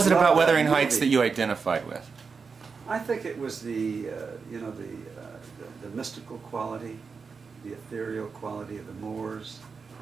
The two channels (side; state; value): left; quieter; 5.2 dB